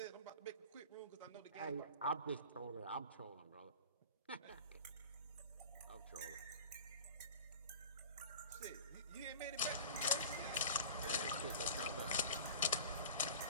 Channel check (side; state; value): both; inverted; correlation -0.38